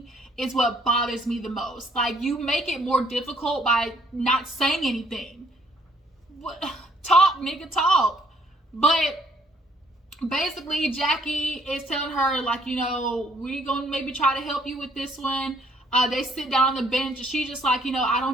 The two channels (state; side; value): normal; both; correlation 0.64